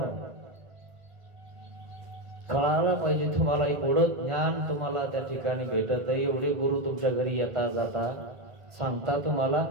कळायला पाहिजे तुम्हाला, एवढं ज्ञान तुम्हाला त्या ठिकाणी भेटत आहे. एवढे गुरु तुमच्या घरी येता जाता सांगता तुम्हाला,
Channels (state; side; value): late; left; 1.5 ms